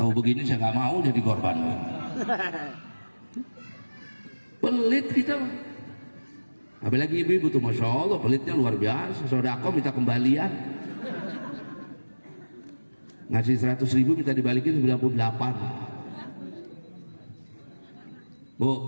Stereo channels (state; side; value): inverted; both; correlation -1.00